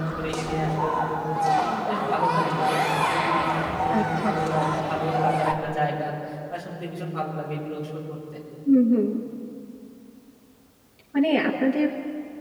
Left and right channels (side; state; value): both; identical; correlation 1.00